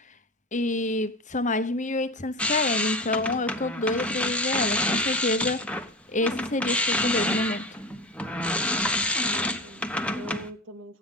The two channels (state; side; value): normal; both; correlation 0.27